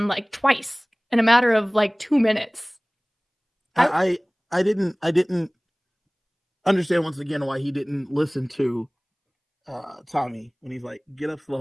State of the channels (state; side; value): identical; both; correlation 1.00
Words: like twice in a matter of like 2 minutes. I didn't understand once again why he didn't listen to Tommy when he's like, get up